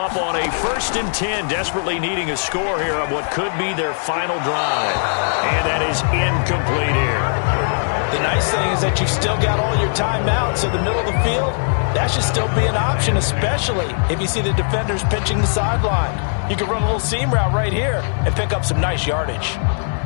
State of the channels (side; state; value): right; silent; digital silence